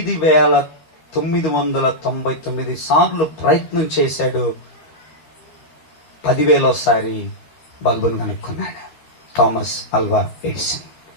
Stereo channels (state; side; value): late; right; 13 ms